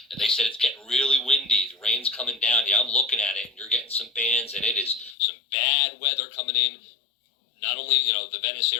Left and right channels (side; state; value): right; drops out; at 5.2 s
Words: and they said it's getting really windy. The rain's coming down. Yeah, I'm looking at it, and you're getting some bands, and it is some bad weather coming in. Not only, the Venice